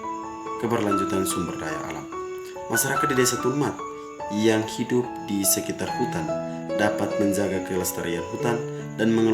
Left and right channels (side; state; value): both; identical; correlation 1.00